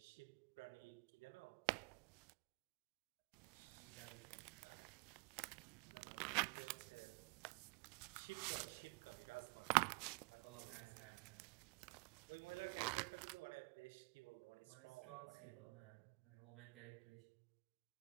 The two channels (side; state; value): left; quieter; 30.3 dB